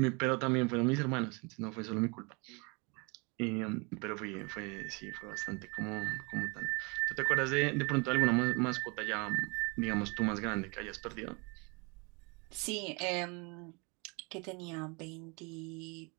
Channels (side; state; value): left; quieter; 30.1 dB